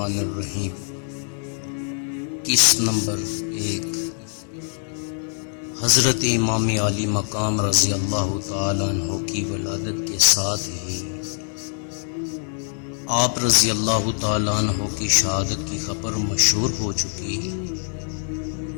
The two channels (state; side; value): silent; right; 60 dB below the other